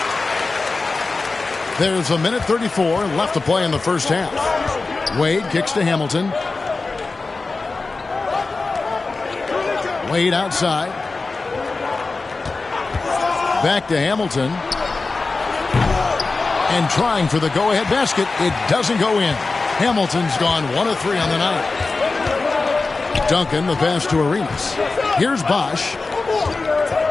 There's a minute 34 left to play in the first half. Wade kicks to Hamilton. Wade outside. Back to Hamilton. And trying for the go-ahead basket. It doesn't go in. Hamilton's gone 1 of 3 on the night. Duncan, the pass to Arenas. Here's Bosch.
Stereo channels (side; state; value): right; quieter; 3.8 dB